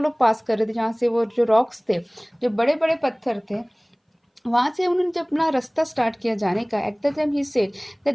पास कर रहे थे, जहाँ से वो जो रॉक्स थे, जो बड़े बड़े पत्थर थे, वहां से उन्होंने जब अपना रास्ता स्टार्ट किया जाने का, at the time he said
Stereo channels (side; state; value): both; identical; correlation 1.00